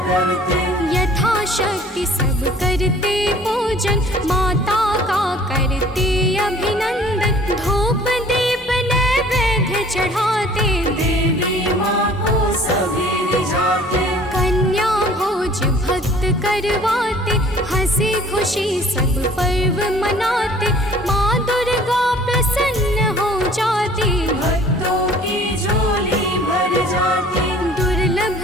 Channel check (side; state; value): both; normal; correlation 0.52